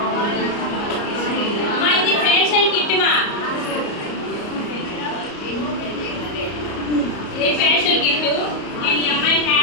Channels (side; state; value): right; late; 34 ms